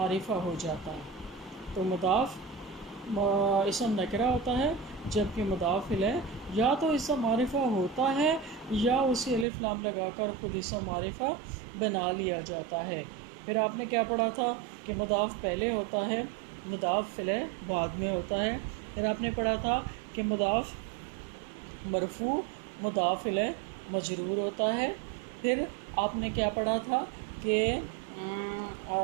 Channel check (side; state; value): left; drops out; at 9.5 s